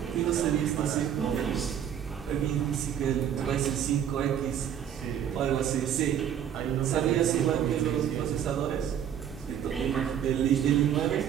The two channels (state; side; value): quieter; left; 9.4 dB